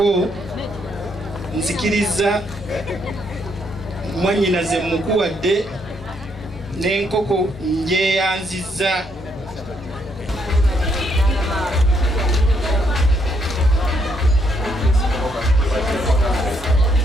nzikiriza mwanyinaze mukuwadde n'enkoko njeyanziza.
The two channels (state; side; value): normal; both; correlation 0.73